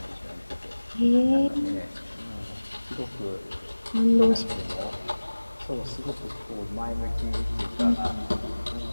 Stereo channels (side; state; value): both; inverted; correlation -1.00